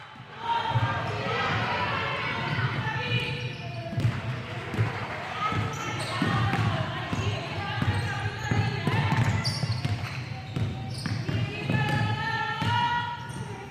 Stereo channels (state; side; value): identical; both; correlation 1.00